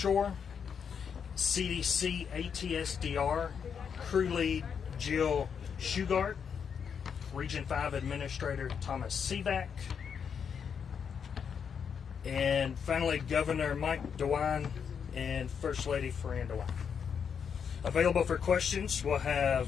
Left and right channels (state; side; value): quieter; right; 7.0 dB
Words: CDC ATSDR Crew Lead Jill Shugart, Region 5 Administrator Thomas Sivak, and finally Governor Mike DeWine and First Lady Fran DeWine. Available for questions, we'll